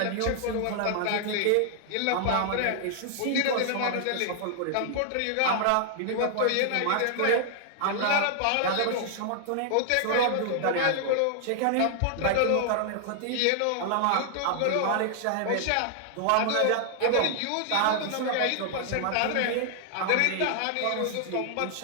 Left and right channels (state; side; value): different; both; correlation 0.00